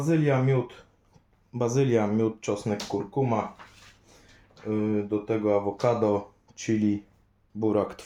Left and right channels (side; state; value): both; identical; correlation 1.00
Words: miód, czosnek, kurkuma, do tego awokado, chili, burak,